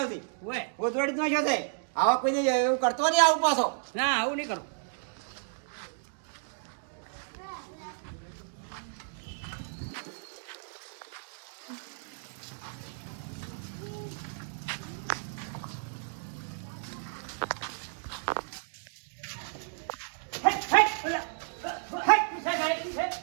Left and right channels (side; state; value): left; silent; digital silence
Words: આવતી ઓય ઓતવાડી નો છે આવા કોઈને એવું કરતો નહીં આવું પાછો ના આવું નહીં કરું